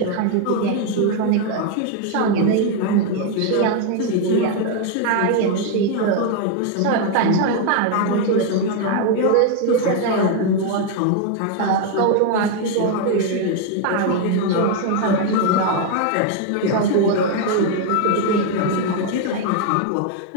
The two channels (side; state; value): both; different; correlation 0.01